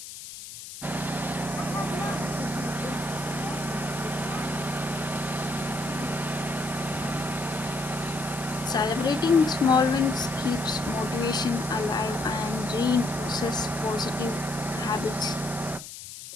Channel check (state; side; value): noise; left; hiss, 12 dB below the sound